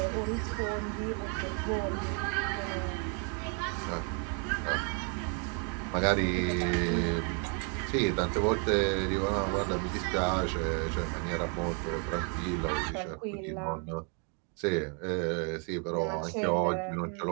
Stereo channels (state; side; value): quieter; left; 38.8 dB